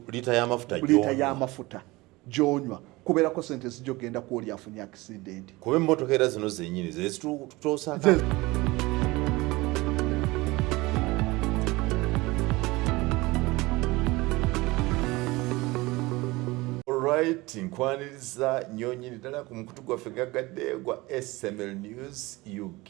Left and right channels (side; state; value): left; quieter; 21.6 dB